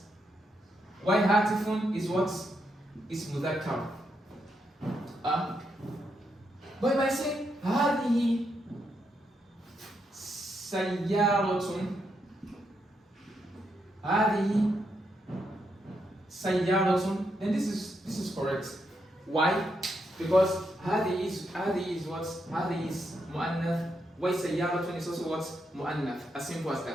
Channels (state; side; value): normal; both; correlation 0.81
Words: Why Hatifun is what? Is mudhakkar. But if I say Hadihi Sayyaratun, Hadihi Sayyaratun, then this is correct. Why? Because Hadihi is what? Hadihi is mu'annath. Why Sayyaratun is also what? Mu'annath. As simple as